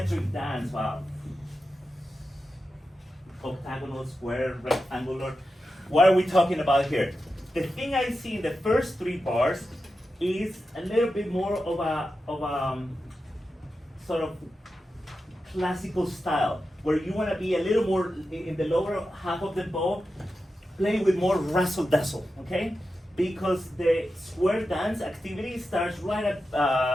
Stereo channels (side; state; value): both; normal; correlation 0.90